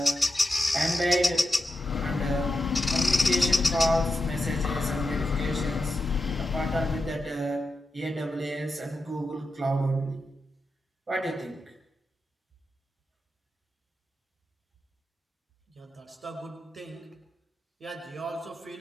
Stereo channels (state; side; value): normal; both; correlation 0.89